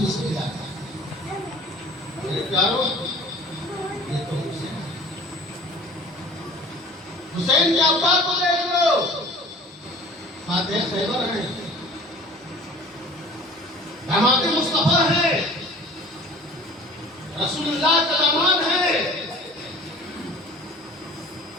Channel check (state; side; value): normal; both; correlation 0.45